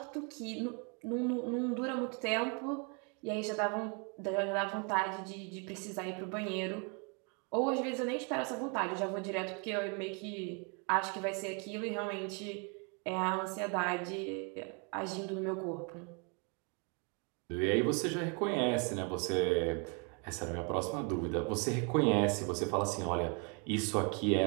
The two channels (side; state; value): left; quieter; 35.6 dB